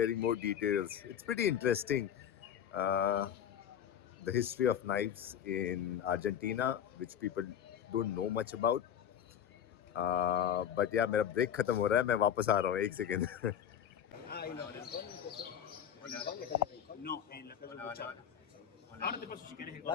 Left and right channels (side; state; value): right; quieter; 9.3 dB